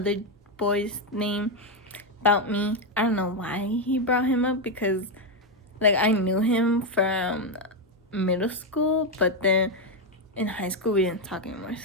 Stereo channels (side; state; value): both; normal; correlation 0.05